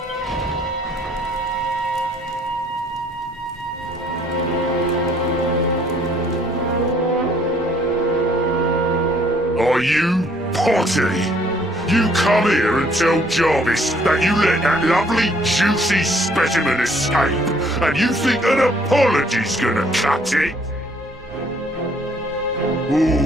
Are you potty? You come here and tell Jarvis that you let that lovely, juicy specimen escape, and you think an apology's gonna cut it?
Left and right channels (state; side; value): normal; both; correlation 0.62